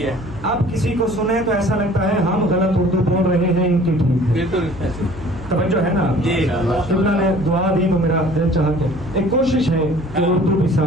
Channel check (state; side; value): noise; left; hum, 15 dB below the sound